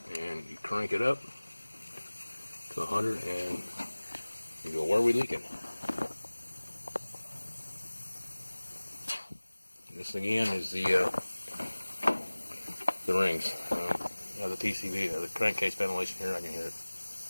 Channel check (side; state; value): both; inverted; correlation -1.00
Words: And you crank it up to 100, and you go, where are we leaking? This again is the rings. The PCV, the crankcase ventilation here. I can hear it.